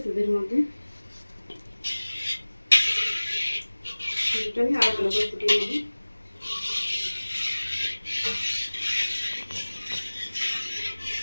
দুধের মধ্যে। দুধটা আমি আরো ভালো করে ফুটিয়ে নেব।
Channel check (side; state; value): both; inverted; correlation -1.00